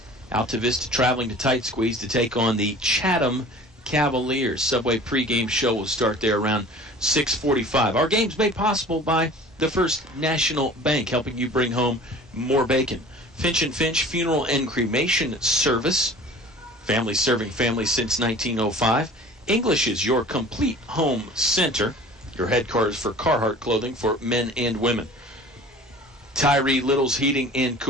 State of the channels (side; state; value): both; normal; correlation 0.43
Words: Altavista traveling to Tight Squeeze to take on the Chatham Cavaliers. Subway pregame show will start there around 6:45. Our game's made possible by the First National Bank, helping you bring home more bacon. Finch & Finch Funeral and Cremation Service. Family serving families since 1905. English is your complete home center. Your headquarters for Carhartt clothing for men and women. Tyree Little's Heating and